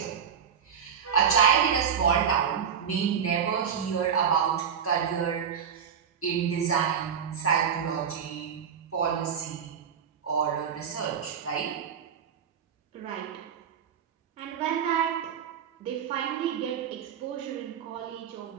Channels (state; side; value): quieter; left; 7.7 dB